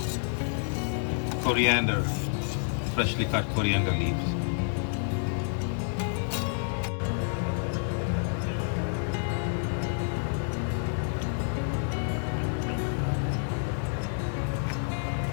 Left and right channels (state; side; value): silent; right; 59 dB below the other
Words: coriander, freshly cut coriander leaves.